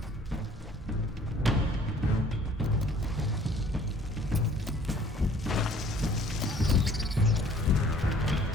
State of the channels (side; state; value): both; normal; correlation 0.55